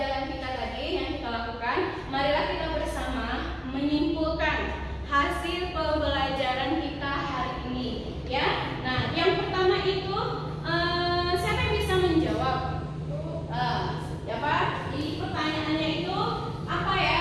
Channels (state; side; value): identical; both; correlation 1.00